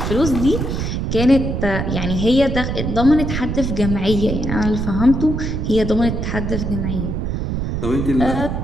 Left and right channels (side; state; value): right; noise; rumble, 2 dB below the sound